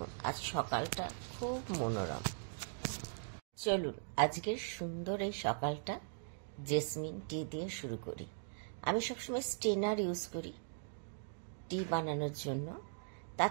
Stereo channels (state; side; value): silent; left; digital silence